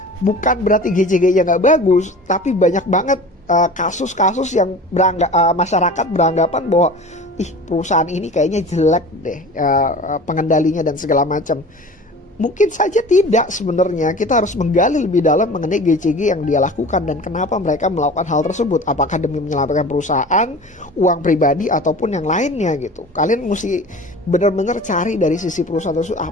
bukan berarti GCG-nya nggak bagus, tapi banyak banget kasus-kasus yang masyarakat beranggapan bahwa perusahaan ini kayaknya jelek deh pengendalinya dan segala macam. Mungkin saja tidak sebenarnya. Kita harus menggali lebih dalam mengenai GCG yang dia lakukan dan kenapa mereka melakukan hal tersebut. Apakah demi menyelamatkan perusahaan, uang pribadi, ataupun yang lainnya gitu. Kalian mesti benar-benar cari dari sisi perusahaan tersebut,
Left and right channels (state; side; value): normal; both; correlation 0.39